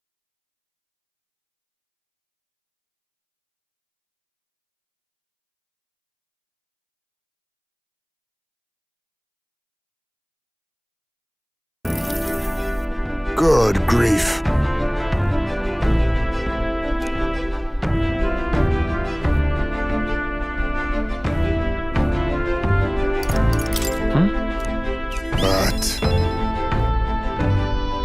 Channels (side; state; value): both; identical; correlation 1.00